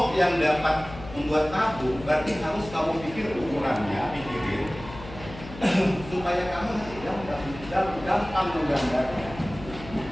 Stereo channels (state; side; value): noise; left; hum, 14 dB below the sound